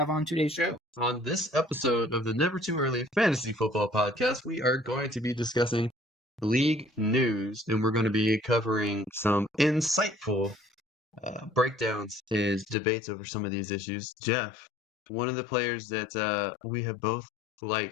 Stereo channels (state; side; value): drops out; right; at 12.8 s